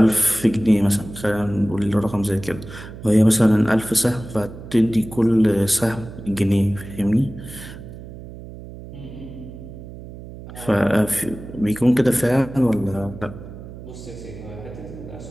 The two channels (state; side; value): noise; right; hum, 14 dB below the sound